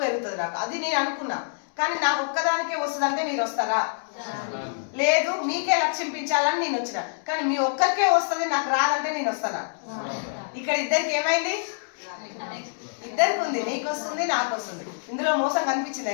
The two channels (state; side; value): silent; right; digital silence